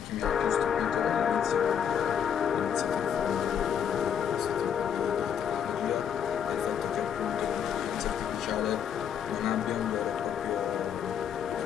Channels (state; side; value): quieter; right; 8.3 dB